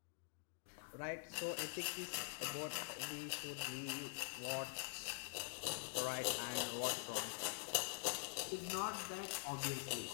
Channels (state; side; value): silent; right; digital silence